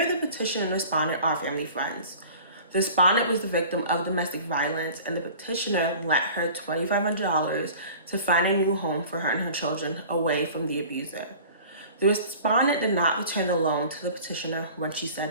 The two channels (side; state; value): both; inverted; correlation -0.44